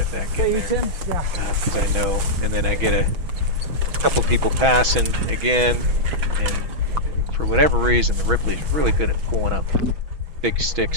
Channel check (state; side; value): late; left; 6.2 ms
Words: back in Hey, there Tim? Yeah. because I know. And then I get a couple people passing again, and for whatever reason, the Ripley's really good at pulling up big